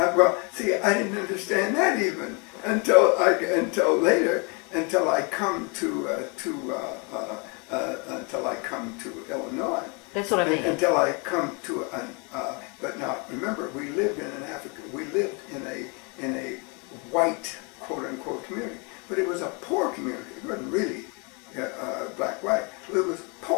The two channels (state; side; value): quieter; right; 32.7 dB